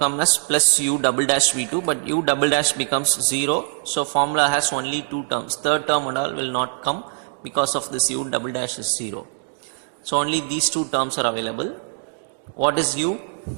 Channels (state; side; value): silent; left; 64 dB below the other